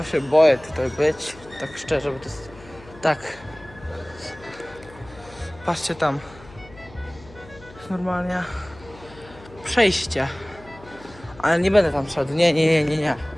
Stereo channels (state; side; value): noise; left; hum, 21 dB below the sound